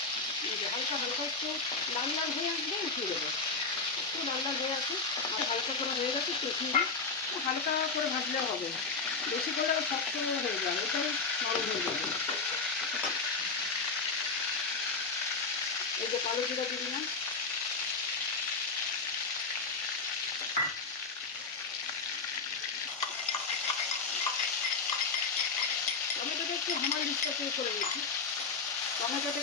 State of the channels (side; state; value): right; quieter; 4.3 dB